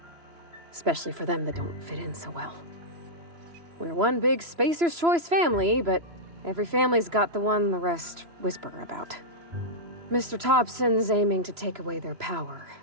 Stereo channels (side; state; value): left; late; 3.0 ms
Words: especially for them that don't fit in so well. We're one big Spacer's Choice family, but every family's got the one the rest whisper about. Mr. Thompson's aiming to take away their power.